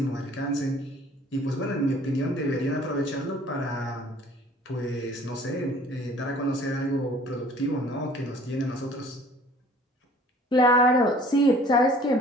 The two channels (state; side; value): normal; both; correlation 0.52